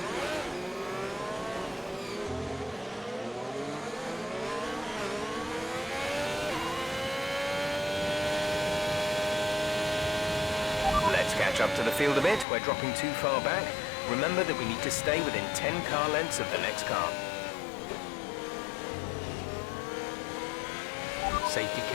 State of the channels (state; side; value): drops out; right; at 12.5 s